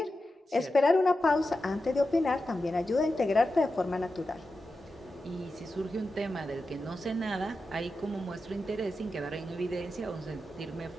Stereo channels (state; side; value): normal; both; correlation 0.91